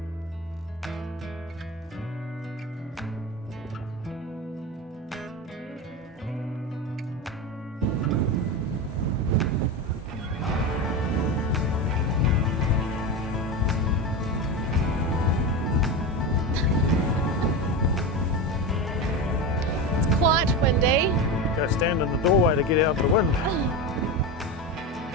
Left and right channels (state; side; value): normal; both; correlation 0.20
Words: Quite windy. Go stand in the doorway to get out of the wind.